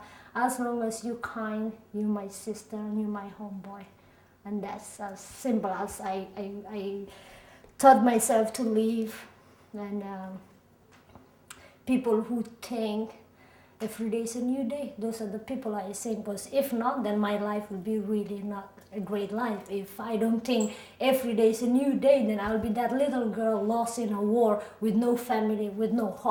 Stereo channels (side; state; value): both; identical; correlation 1.00